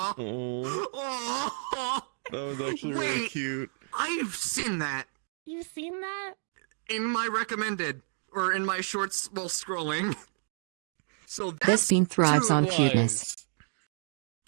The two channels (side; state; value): left; silent; 58 dB below the other